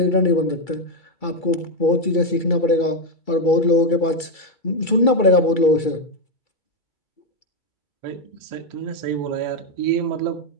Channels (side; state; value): right; late; 2.3 ms